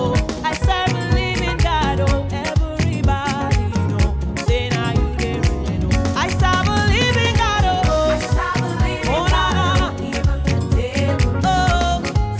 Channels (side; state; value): both; identical; correlation 1.00